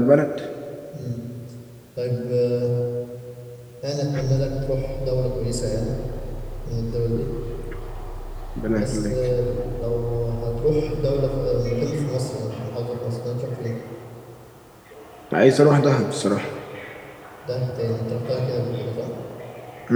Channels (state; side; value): identical; both; correlation 1.00